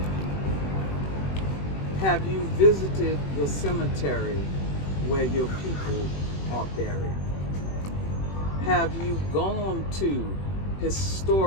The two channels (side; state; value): right; late; 21 ms